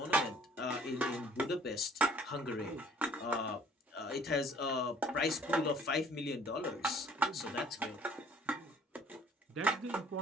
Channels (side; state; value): both; normal; correlation 0.56